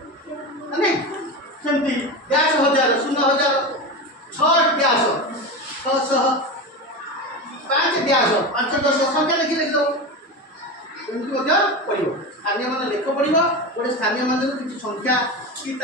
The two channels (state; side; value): normal; both; correlation 0.23